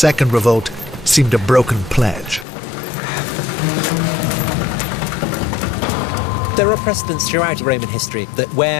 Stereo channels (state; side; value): drops out; right; at 2.5 s